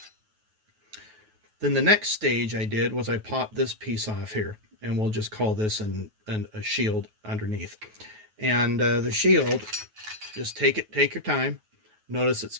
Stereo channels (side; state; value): left; late; 9.3 ms